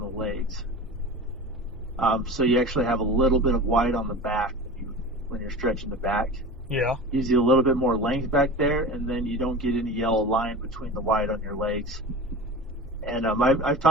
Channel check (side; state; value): both; normal; correlation 0.33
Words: legs. So you actually have a little bit of white on the back when you're stretching the back. Yeah. Gives you a little bit more length back there, and then you don't get any yellow line between the white on your legs. And I've